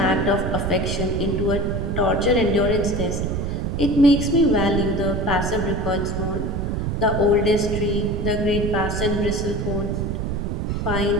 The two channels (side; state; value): right; noise; rumble, 1 dB below the sound